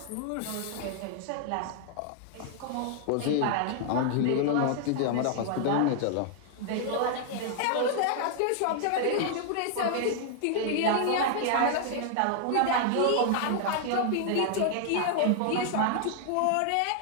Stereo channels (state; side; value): different; both; correlation 0.00